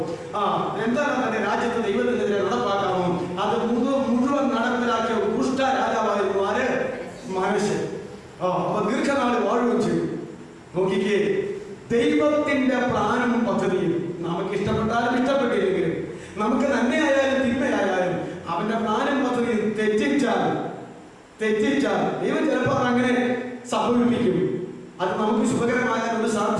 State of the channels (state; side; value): identical; both; correlation 1.00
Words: എന്തെല്ലാം തന്റെ രാജ്യത്ത് ദൈവത്തിനെതിരെ നടപ്പാക്കാമോ, അത് മുഴുവൻ നടപ്പിലാക്കിയ ദുഷ്ട രാജാവായിരുന്നു ആര്? മനുഷ്യൻ. അപ്പൊ ദീർഘനാള് വാഴുകയും ചെയ്തു. നോക്കിക്കേ, ദൈവത്തിന്റെ പ്ലാനും പദ്ധതിയും നമുക്ക് ഇഷ്ടപ്പെട്ടാലും ഇഷ്ടപ്പെട്ടില്ലെങ്കിലും, നമുക്ക് നന്മയായാലും തിന്മയായാലും അവന്റെ പ്ലാനും പദ്ധതിയും തെറ്റിച്ചാൽ ദൈവം ചിലപ്പോൾ അങ്ങനെ സംഭവിപ്പിക്കും. അത് നമുക്ക് ശുഭകരമായ ഒരു